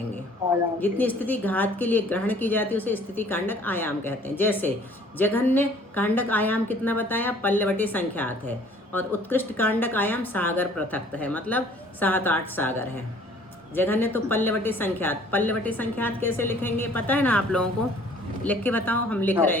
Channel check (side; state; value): both; normal; correlation 0.55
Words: जितनी स्थिति घात के लिए ग्रहण की जाती है उसे स्थिति कांडक आयाम कहते हैं। जैसे जघन्य कांडक आयाम कितना बताया, पल्लवटे संख्यात है, और उत्कृष्ट कांडक आयाम सागर पृथक्त है, मतलब 7-8 सागर है। जघन्य तो पल्लवटे संख्यात, पल्लवटे संख्यात कैसे लिखेंगे पता है ना आप लोगों को, लिख के बताओ। हम लिख रहे हैं